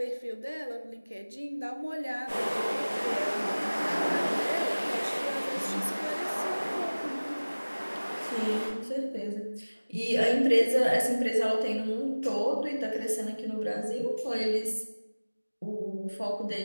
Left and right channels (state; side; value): inverted; both; correlation -1.00